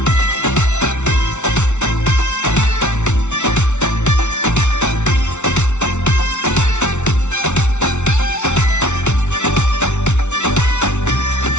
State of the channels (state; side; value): late; right; 0.83 ms